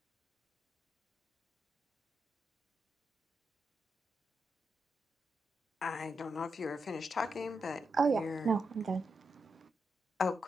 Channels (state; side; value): normal; both; correlation 0.85